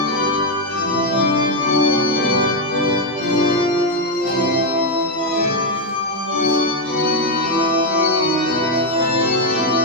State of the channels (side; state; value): both; normal; correlation 0.04